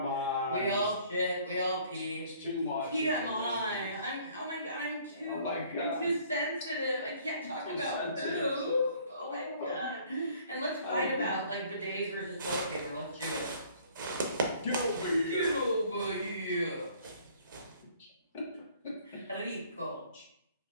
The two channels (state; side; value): inverted; both; correlation -0.57